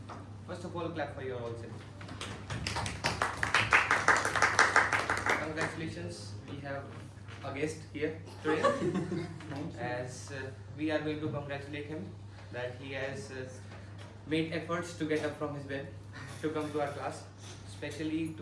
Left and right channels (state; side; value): identical; both; correlation 1.00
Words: First of all, clap for your all self. Congratulations, we have a guest here today. As we are going to congratulate him that he has made efforts to get up from his bed to come to our class, especially